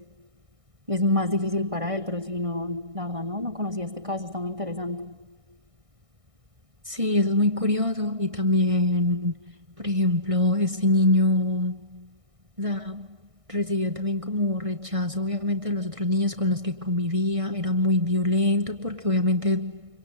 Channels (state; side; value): late; left; 1.6 ms